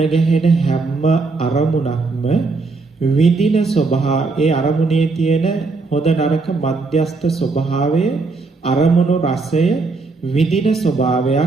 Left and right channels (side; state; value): left; quieter; 3.9 dB